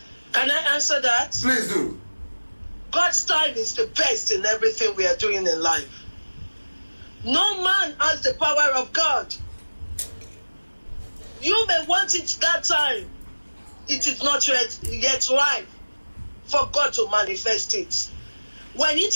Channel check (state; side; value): inverted; both; correlation -1.00